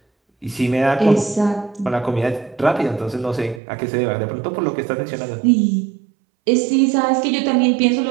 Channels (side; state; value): left; drops out; at 3.6 s